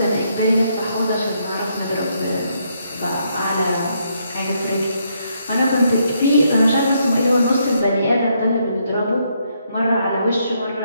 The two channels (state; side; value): inverted; both; correlation -0.75